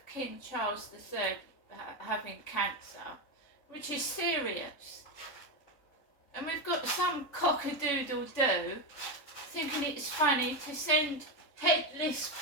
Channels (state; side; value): late; right; 3.6 ms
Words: King Charles III having cancer, which is serious. And we've got some cock-a-doodle-doo thinking it's funny to send headless